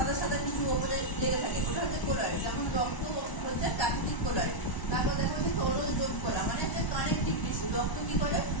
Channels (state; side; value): late; right; 1.0 ms